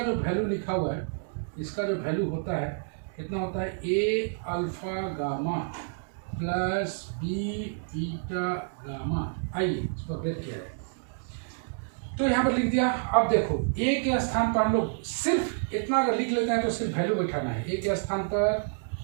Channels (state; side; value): silent; left; digital silence